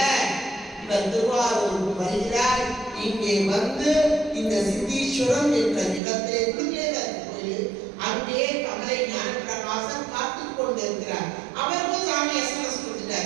இவர் திருவாரூருக்கு வருகிறார். இங்கே வந்து இந்த சித்தீஸ்வரம் என்ற இடத்திலே கோயில், அங்கே கமலை ஞானப்பிரகாசன் காத்துக் கொண்டிருக்கிறார். அவருக்கும் சாமி எஸ்எம்எஸ்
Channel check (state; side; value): drops out; left; at 6.0 s